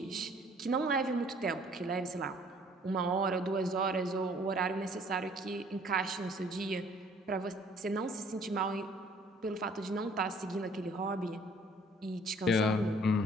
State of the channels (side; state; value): both; normal; correlation 0.57